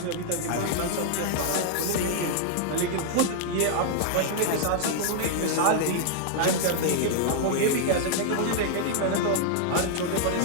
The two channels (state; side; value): different; both; correlation -0.01